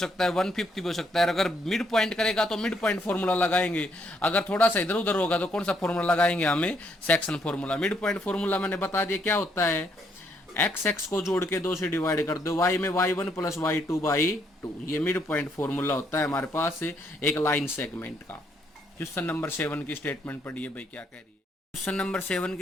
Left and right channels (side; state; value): both; normal; correlation 0.72